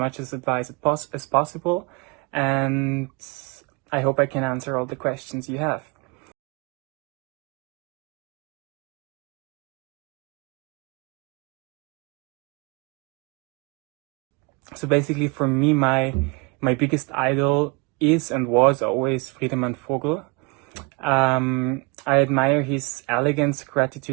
advice as possible, and I hope I can answer all the questions you have. So basically for me, my biggest idol is and was always Friedemann Vogel. I admire his elegance,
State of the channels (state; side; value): quieter; left; 29.3 dB